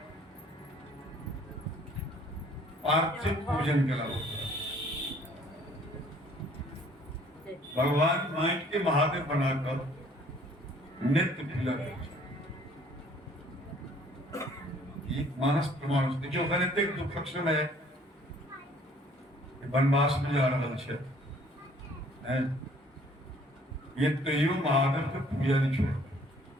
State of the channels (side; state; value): both; normal; correlation 0.57